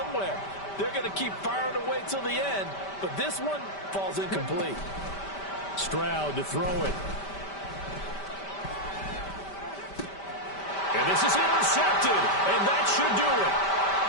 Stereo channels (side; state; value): right; late; 5.1 ms